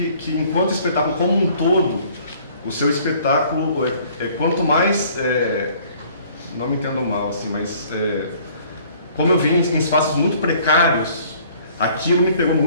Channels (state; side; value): inverted; both; correlation -0.56